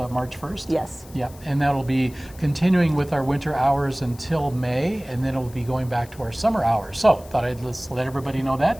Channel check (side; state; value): left; noise; hiss, 22 dB below the sound